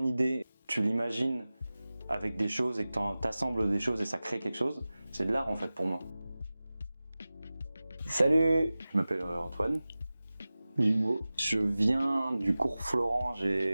idée, tu l'imagines avec des choses et que tu assembles des choses et ça crée quelque chose, c'est de l'art, en fait, pour moi. Salut, je m'appelle Antoine. Je viens du cours Florent,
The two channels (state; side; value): inverted; both; correlation -0.97